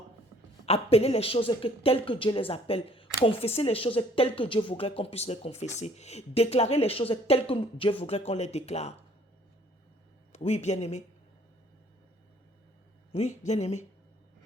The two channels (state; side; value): normal; both; correlation 0.58